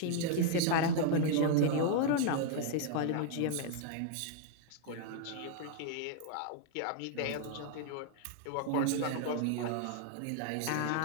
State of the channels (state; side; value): different; both; correlation 0.00